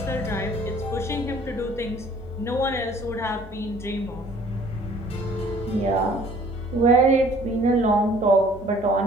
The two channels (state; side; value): normal; both; correlation 0.55